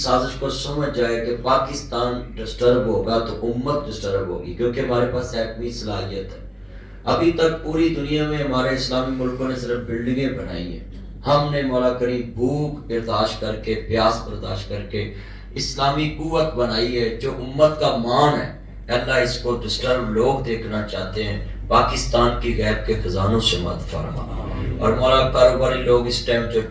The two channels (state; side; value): identical; both; correlation 1.00